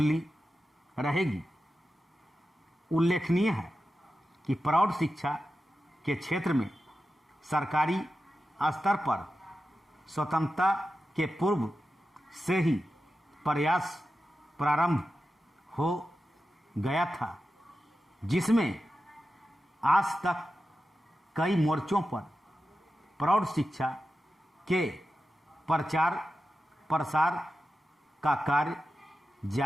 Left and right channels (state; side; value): normal; both; correlation 0.91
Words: रहेगी। उल्लेखनीय है कि प्रौढ़ शिक्षा के क्षेत्र में सरकारी स्तर पर स्वतंत्रता के पूर्व से ही प्रयास प्रारंभ हो गया था, जिसमें आज तक कई मोर्चों पर प्रौढ़ शिक्षा के प्रचार प्रसार का कार्य